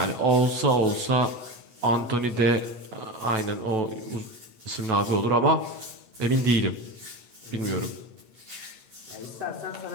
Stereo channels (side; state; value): left; late; 8.3 ms